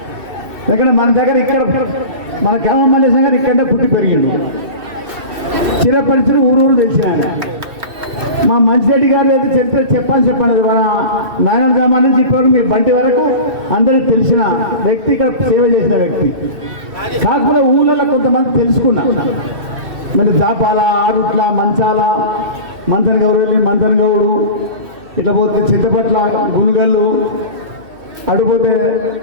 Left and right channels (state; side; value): late; left; 2.7 ms